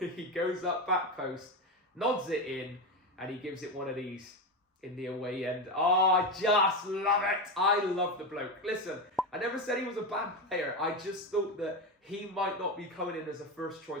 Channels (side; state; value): both; normal; correlation 0.15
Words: goes up back post, nods it in, and he gives it one of these in the away end. Oh, I just love it. I love the bloke. Listen, I never said he was a bad player. I just thought that he might not be coming in as a